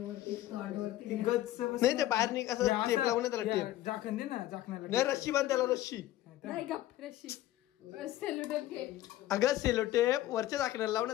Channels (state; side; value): quieter; right; 14.7 dB